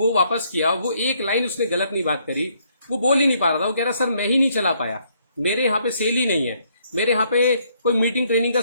वापस किया, वो एक लाइन उसने गलत नहीं बात करी, वो बोल ही नहीं पा रहा था। वो कह रहा सर मैं ही नहीं चला पाया, मेरे यहाँ पे सेल ही नहीं है, मेरे यहाँ पे कोई मीटिंग ट्रेनिंग का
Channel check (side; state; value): both; inverted; correlation -0.70